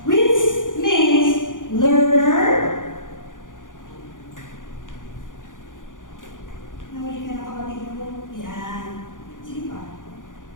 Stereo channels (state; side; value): late; right; 0.88 ms